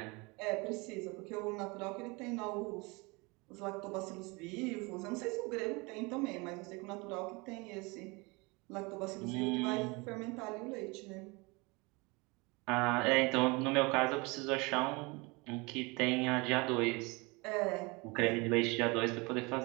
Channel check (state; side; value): quieter; left; 26.7 dB